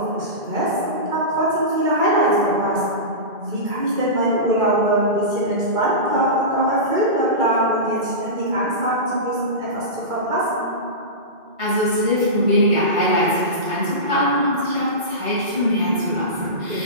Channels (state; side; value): late; left; 2.1 ms